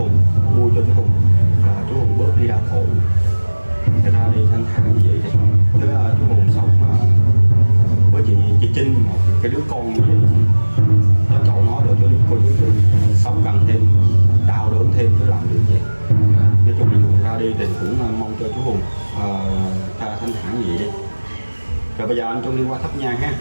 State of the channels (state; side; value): inverted; both; correlation -1.00